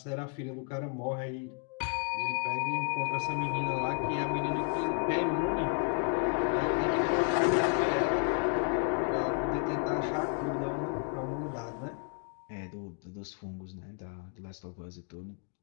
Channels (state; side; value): quieter; right; 35.0 dB